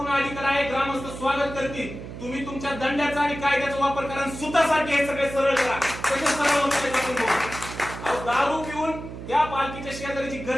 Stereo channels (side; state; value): right; noise; hum, 11 dB below the sound